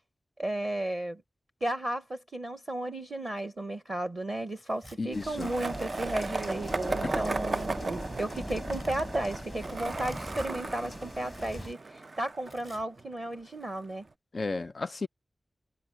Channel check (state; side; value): normal; both; correlation 0.93